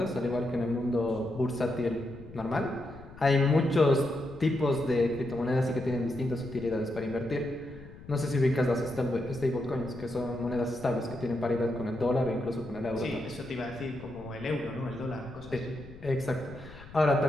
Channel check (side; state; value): left; noise; rumble, 17 dB below the sound